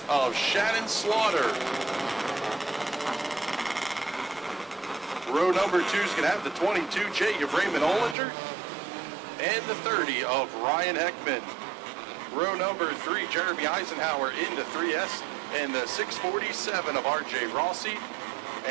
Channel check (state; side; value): drops out; left; at 8.2 s